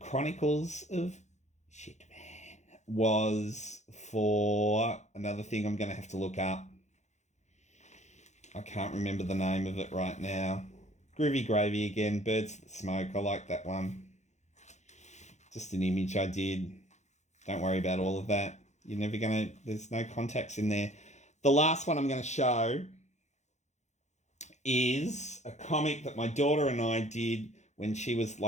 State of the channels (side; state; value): right; late; 0.33 ms